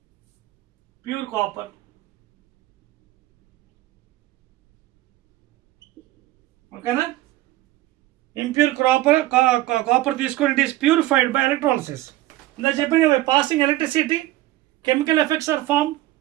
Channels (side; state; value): left; quieter; 16.3 dB